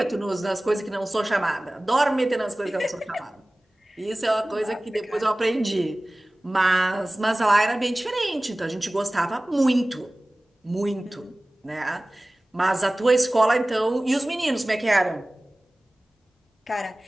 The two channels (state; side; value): normal; both; correlation 0.98